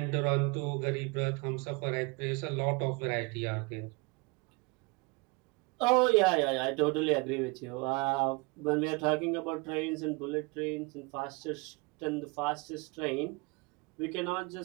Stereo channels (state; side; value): quieter; left; 27.9 dB